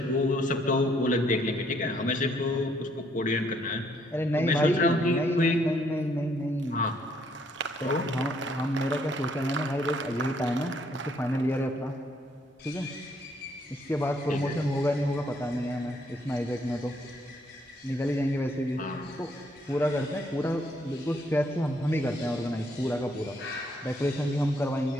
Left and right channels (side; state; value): both; normal; correlation 0.69